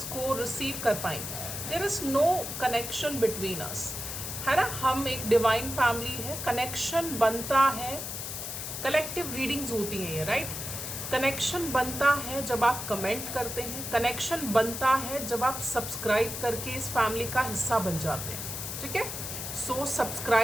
को रिसीव कर पाएंगे। There is no connection between us, है ना। हम एक डिवाइन फैमिली है, कनेक्शन बनता है, कलेक्टिव रीडिंग्स होती हैं ये, राइट। कनेक्शन बनता है जब आप कमेंट करते हैं, कनेक्शन बनता है जब आप सब्सक्राइब करके इस फैमिली का हिस्सा बन जाते हैं, ठीक है। सो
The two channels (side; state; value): left; noise; hiss, 6 dB below the sound